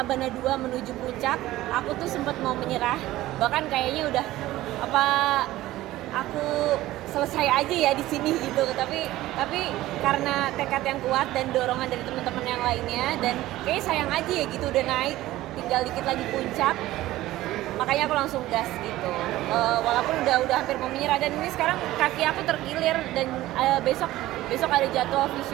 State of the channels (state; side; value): quieter; left; 16.1 dB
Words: 2 menuju puncak, aku tuh sempat mau menyerah. Bahkan kayaknya udah aku selesai aja ya di sini gitu. Tapi karena tekad yang kuat dan dorongan dari teman-teman yang lainnya dan kayaknya sayang aja ya gitu udah naik, tinggal dikit lagi puncak. Makanya aku langsung gas gitu. Walaupun udah hampir mau menyerah dan ini sekarang kaki aku terkilir dan besok ada jadwal